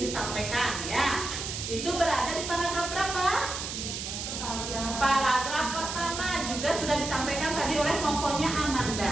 disampaikan ya. Itu berada di paragraf berapa? Paragraf pertama, juga sudah disampaikan tadi oleh kelompoknya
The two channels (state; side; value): noise; right; hiss, 5 dB below the sound